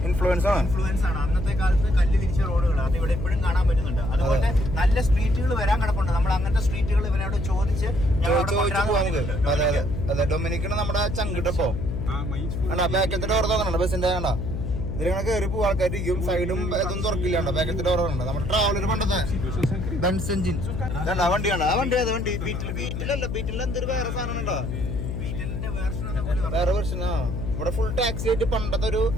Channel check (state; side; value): noise; left; hum, 4 dB below the sound